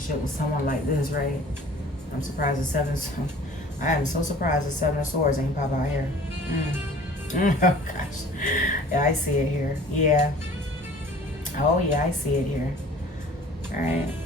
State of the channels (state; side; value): normal; both; correlation 0.48